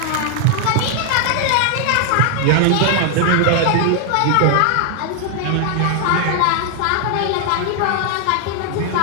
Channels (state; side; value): different; both; correlation 0.00